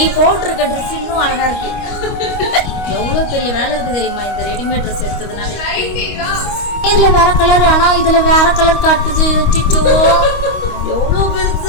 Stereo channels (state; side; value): late; right; 25 ms